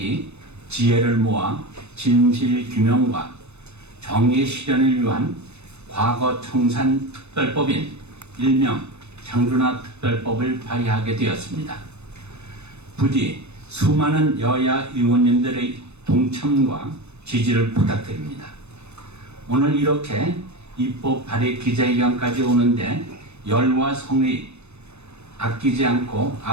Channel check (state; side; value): late; left; 0.81 ms